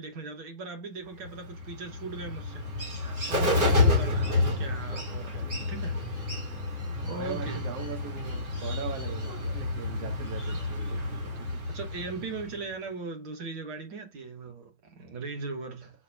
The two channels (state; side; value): late; left; 7.6 ms